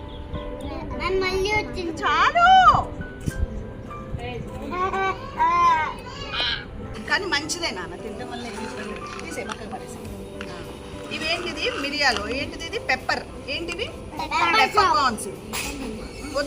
చాలు. కానీ మంచిదే నాన్న, తినడం వల్ల తీసే పక్కన పడేసి. ఇవేంటిది? మిరియాలు. ఏంటిది? ఇది పెప్పర్. ఏంటివి? Pepper corns.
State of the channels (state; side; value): identical; both; correlation 1.00